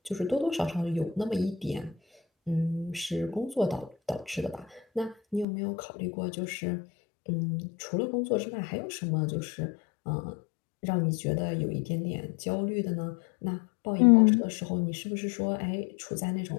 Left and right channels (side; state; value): right; drops out; at 5.5 s